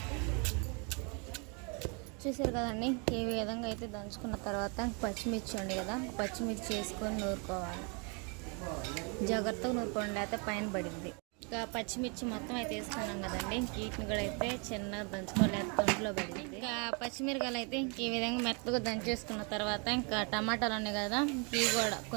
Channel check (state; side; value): quieter; left; 34.5 dB